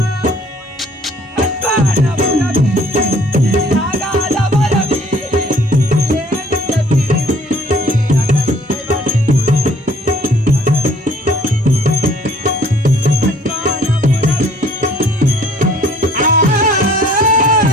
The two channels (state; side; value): normal; both; correlation 0.57